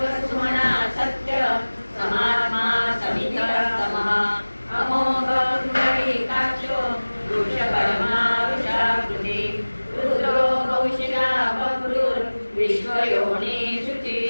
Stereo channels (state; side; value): inverted; both; correlation -1.00